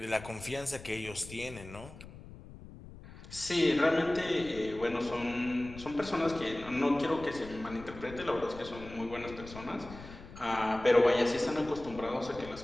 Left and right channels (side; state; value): left; noise; rumble, 15 dB below the sound